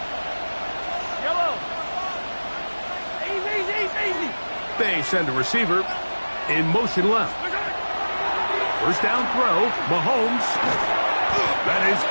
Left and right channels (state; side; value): inverted; both; correlation -1.00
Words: They send a receiver in motion left. First down throw, Mahomes. That is